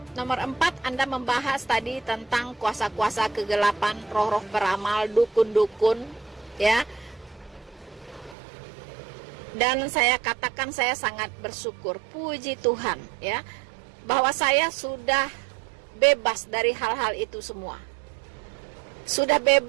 nomor 4 Anda membahas tadi tentang kuasa-kuasa kegelapan, roh-roh peramal, dukun-dukun, ya. Dan saya katakan saya sangat bersyukur, puji Tuhan, ya, bahwa saya sudah bebas dari hal-hal itu semua. Sudah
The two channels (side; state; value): left; drops out; at 8.3 s